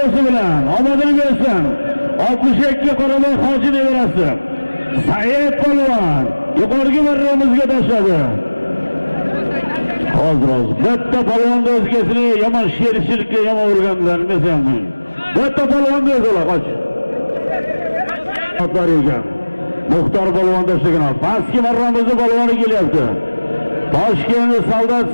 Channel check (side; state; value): both; inverted; correlation -1.00